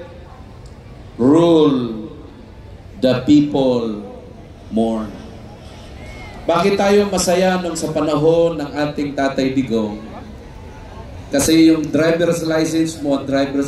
rule, the people mourn. Bakit tayo masaya nung sa panahon ng ating Tatay Digong? Kasi yung driver's license mo at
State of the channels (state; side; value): identical; both; correlation 1.00